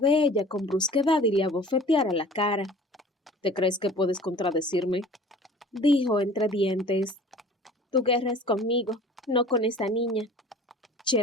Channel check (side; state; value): both; normal; correlation 0.45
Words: ella con brusquedad y le abofeteara la cara. «¿Te crees que puedes contradecirme?», dijo entre dientes. «Tu guerra es conmigo, no con esa niña».